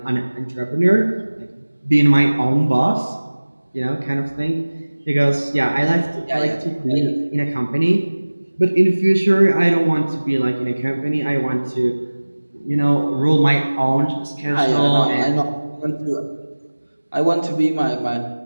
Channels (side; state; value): both; inverted; correlation -1.00